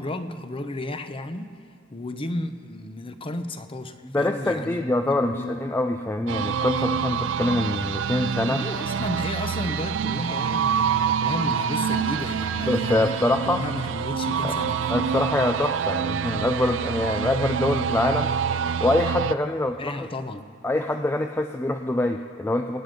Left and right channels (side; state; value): both; normal; correlation 0.51